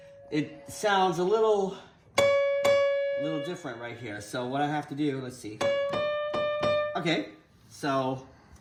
It sounds a little different right here. So what I have to do, let's see. Okay, So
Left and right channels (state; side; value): identical; both; correlation 1.00